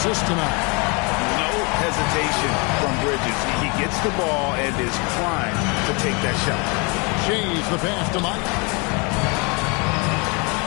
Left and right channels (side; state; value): right; quieter; 30.8 dB